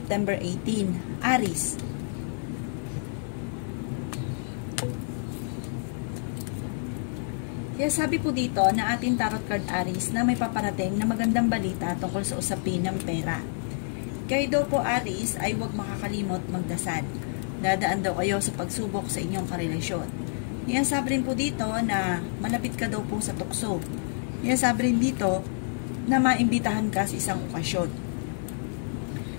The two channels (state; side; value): silent; right; digital silence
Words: 18. Aries. Kaya sabi po dito na ating tarot card Aries na may paparating na magandang balita tungkol sa usapin ng pera. Kayo daw po Aries ay huwag makakalimot magdasal. Dadaan daw kayo sa pagsubok sa inyong karelasyon. Kaya sabi rin po dito na malapit ka daw po sa tukso. Kaya sabi rin dito na maimbitahan ka sa isang okasyon.